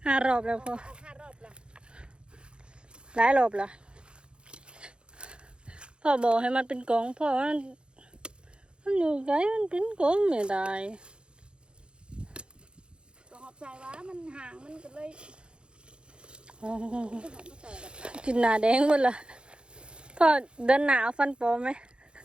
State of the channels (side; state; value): left; late; 0.054 ms